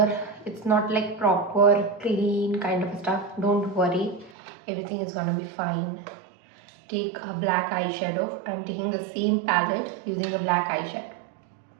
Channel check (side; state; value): left; drops out; at 4.3 s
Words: it's not like proper clean kind of stuff. Don't worry, everything is gonna be fine. Take a black eyeshadow. I'm taking the same palette using a black eyeshadow.